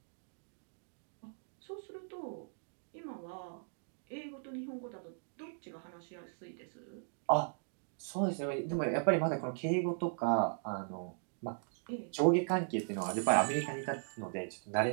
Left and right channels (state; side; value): silent; left; digital silence